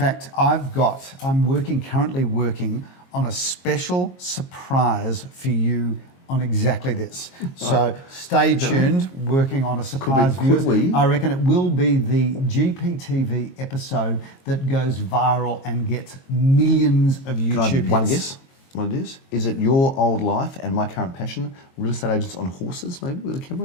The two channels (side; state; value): right; late; 22 ms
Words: I'm currently working on a special surprise for you on exactly this. So stay tuned, working on a surprise, could viewers. we? I reckon it will be the GPTV episode that goes viral and gets millions of YouTube Can I have one hits. guess what it is? Is it your old life and my current passion, real estate agents on horses, maybe, with a